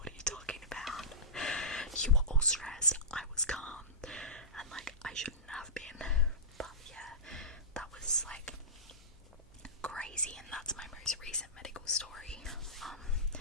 are you talking about? You were all stressed, I was calm, and, like, I shouldn't have been. But yeah, that was, like, crazy, and that's my most recent medical story.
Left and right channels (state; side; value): normal; both; correlation -0.18